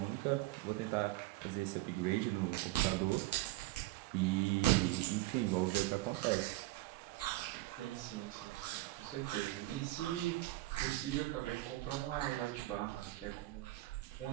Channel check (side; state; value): left; quieter; 18.3 dB